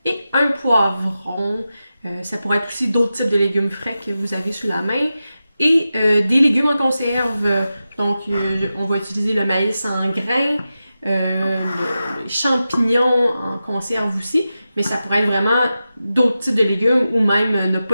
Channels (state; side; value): inverted; both; correlation -0.92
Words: et un poivron. Ça pourrait être aussi d'autres types de légumes frais que vous avez sous la main. Et des légumes en conserve. Donc, on va utiliser le maïs en grains, les champignons en conserve aussi. Mais ça pourrait être vraiment d'autres types de légumes ou même ne